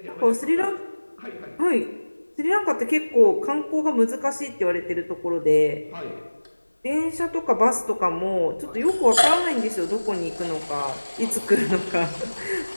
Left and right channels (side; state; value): both; inverted; correlation -1.00